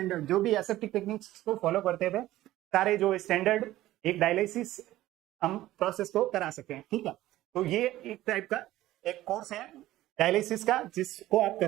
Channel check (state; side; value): quieter; left; 15.4 dB